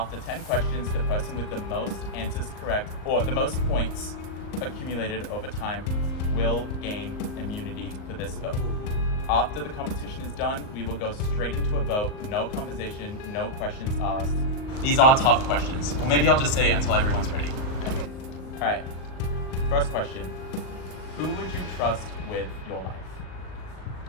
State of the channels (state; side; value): late; right; 38 ms